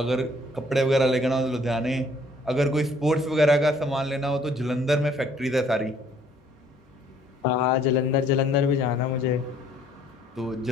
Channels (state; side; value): normal; both; correlation 0.62